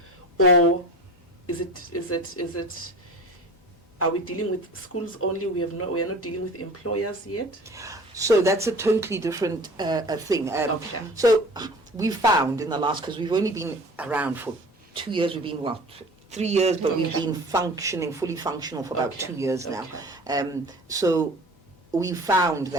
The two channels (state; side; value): normal; both; correlation 0.41